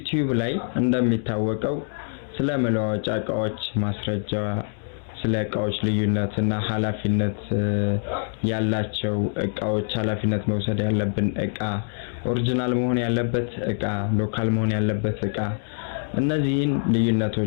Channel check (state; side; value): silent; right; digital silence